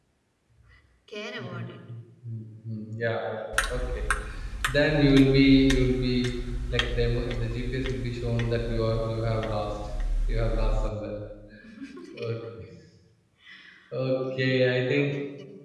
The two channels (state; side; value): identical; both; correlation 1.00